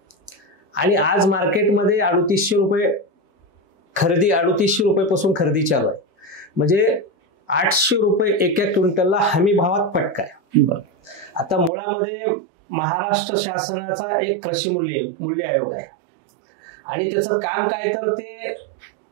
आणि आज मार्केटमध्ये 3800 रुपये खरेदी, 3800 रुपयेपासून खरेदी चालू आहे. म्हणजे 800 रुपये एका क्विंटलला हमी भावात फटका आहे. आता मुळामध्ये महाराष्ट्र शासनाचा एक कृषी मूल्य आयोग आहे आणि त्याचं काम काय तर ते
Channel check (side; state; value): left; drops out; at 11.7 s